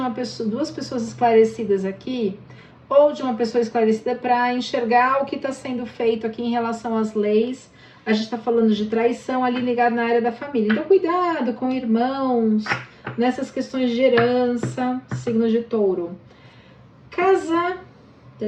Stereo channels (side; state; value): both; identical; correlation 1.00